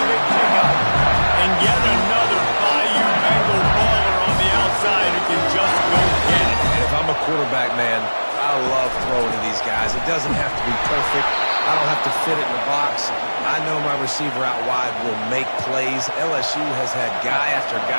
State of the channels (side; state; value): both; inverted; correlation -1.00